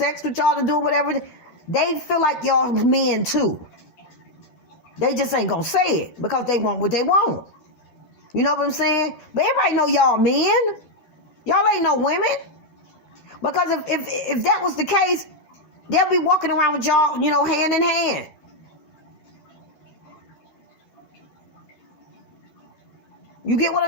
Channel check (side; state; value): right; late; 13 ms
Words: with y'all and doing whatever, they feel like y'all men too. They just ain't gonna say it because they want what they want. You know what I'm saying? But everybody know y'all men. Y'all ain't no women. Because if that was the case, they'll be walking around with y'all, you know, hand in hand. You get what